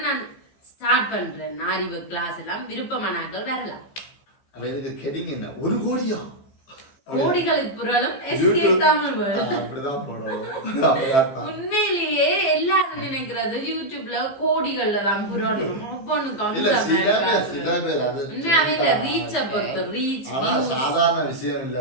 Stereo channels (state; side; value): late; right; 15 ms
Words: நான் ஸ்டார்ட் பண்றேன் அறிவு கிளாஸ் எல்லாம். விருப்பமானாக்கள் வரலாம். ஒரு கோடியா கோடிகளுக்கு புரளும் உண்மையிலேயே எல்லாரும் நினைக்கிறது யூடியூப்ல கோடிகள்ல தான் புரளணும். உண்மையாவே இந்த ரீச்ச பொறுத்து ரீச் சாதாரண விஷயம் இல்ல.